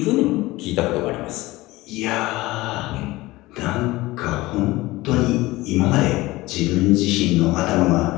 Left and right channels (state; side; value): quieter; right; 19.4 dB